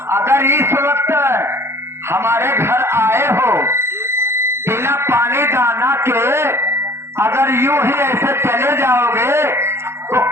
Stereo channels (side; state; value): left; late; 0.12 ms